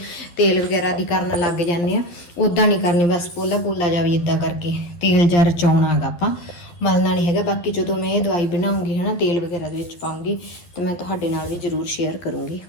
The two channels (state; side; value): late; right; 11 ms